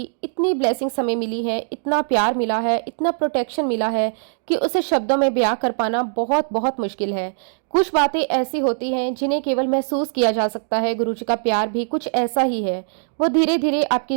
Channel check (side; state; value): left; silent; digital silence